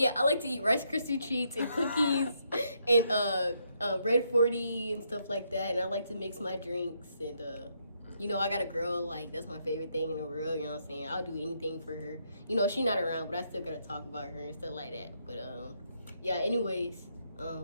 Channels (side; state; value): both; inverted; correlation -0.76